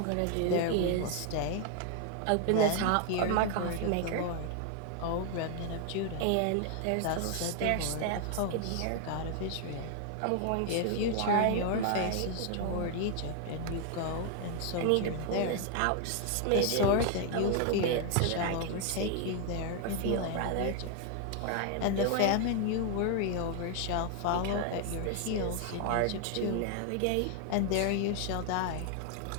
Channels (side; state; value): both; different; correlation 0.00